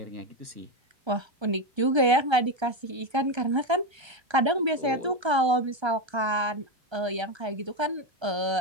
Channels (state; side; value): late; left; 1.3 ms